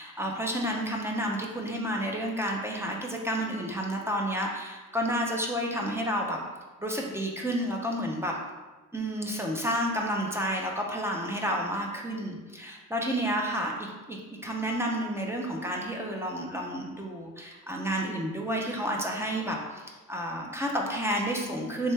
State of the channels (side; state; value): both; normal; correlation 0.35